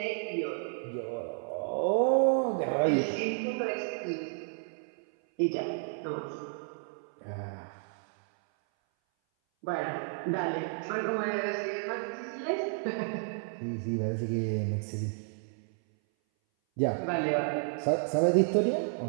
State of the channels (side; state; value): left; silent; 57 dB below the other